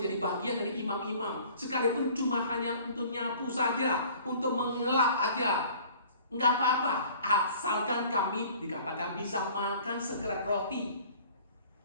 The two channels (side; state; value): both; inverted; correlation -0.50